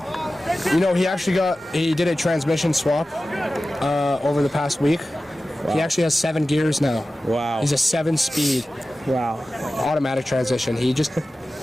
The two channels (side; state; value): both; normal; correlation 0.95